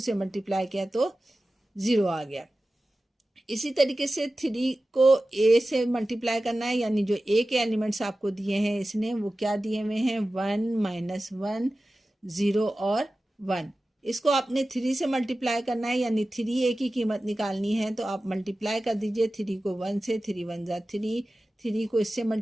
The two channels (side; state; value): both; normal; correlation 0.95